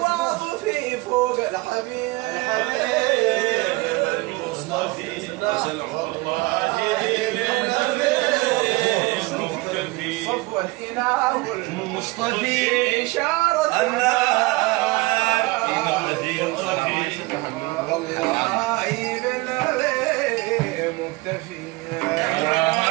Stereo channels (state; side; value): quieter; left; 23.0 dB